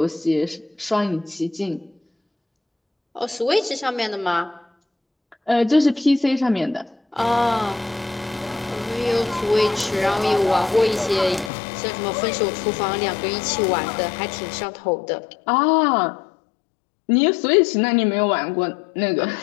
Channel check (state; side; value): drops out; right; at 11.5 s